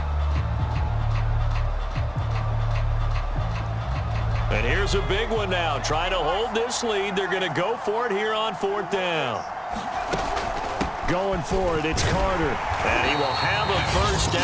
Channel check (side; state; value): both; identical; correlation 1.00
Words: And here's a big one now. Trying to hold this lead. They're going to go for it here on fourth down. Going for it, it's Carter. And he will have a first